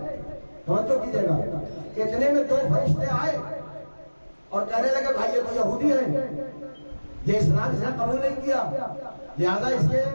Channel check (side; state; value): both; inverted; correlation -1.00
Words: توجہ کیجیے گا، اتنے میں دو فرشتے آئے اور کہنے لگے بھائی یہ تو یہودی ہے، یہ اسلام اس نے قبول نہیں کیا، لہذا اس کے